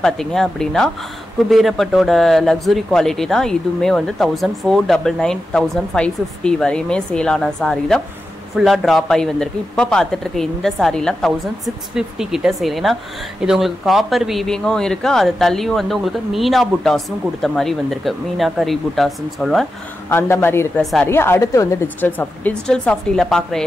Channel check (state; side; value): normal; both; correlation 0.90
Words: பாத்தீங்க அப்படினா குபேரப்பட்டோட லக்ஸரி குவாலிட்டி தான். இதுமே வந்து 1499 1550 வரையுமே சேல் ஆன saree தான். ஃபுல்லா டிராப் ஆகி வந்திருக்கு. இப்போ பார்த்துட்டு இருக்க இந்த சாரீலாம் 1650 கிட்ட சேல். ஏன்னா இது உங்களுக்கு காப்பர் வீவிங்கும் இருக்கு, அது தள்ளியும் வந்து உங்களுக்கு மீனா புட்டாஸும் கொடுத்த மாதிரி வந்திருக்கு. மீனா கரி புட்டாஸ்ன்னு சொல்லுவேன், அந்த மாதிரி இருக்கிற சாரீ. அடுத்து வந்து டிஜிட்டல் சாஃப்டியில் பார்க்குற